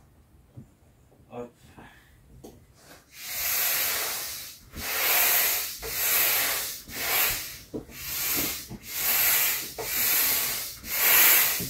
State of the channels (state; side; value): identical; both; correlation 1.00